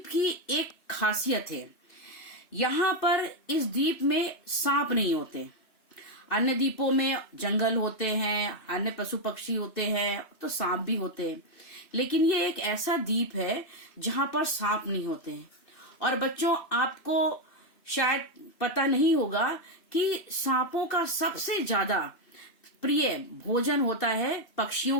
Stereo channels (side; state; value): right; late; 2.6 ms